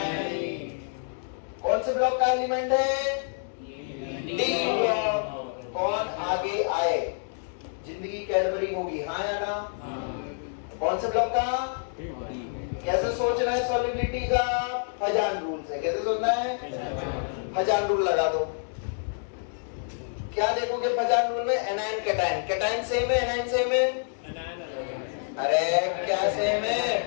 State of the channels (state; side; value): silent; right; digital silence